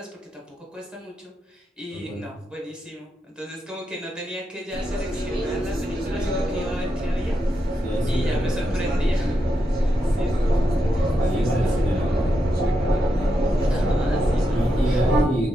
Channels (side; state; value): both; normal; correlation 0.85